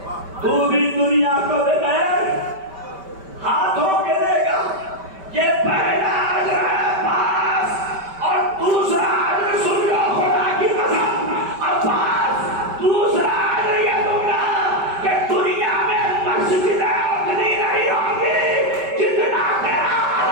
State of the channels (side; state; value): left; late; 5.2 ms